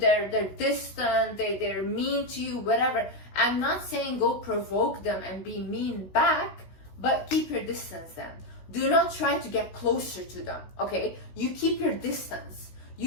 distant, they're mean to you, whatever. I'm not saying go provoke them and be mean back, but keep your distance then. Do not try to get closer to them, okay? You keep your distance.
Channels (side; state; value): right; late; 16 ms